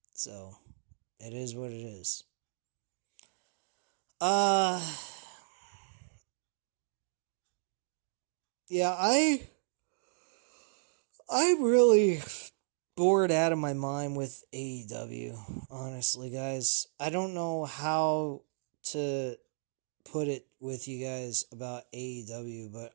So, it is what it is. Yeah, I really bored out of my mind with AEW, honestly, guys. I don't know how to put it with you guys about AEW, but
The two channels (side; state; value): left; silent; digital silence